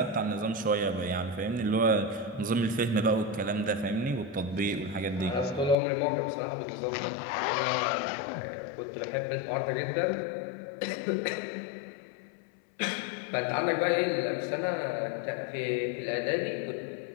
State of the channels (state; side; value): drops out; right; at 5.8 s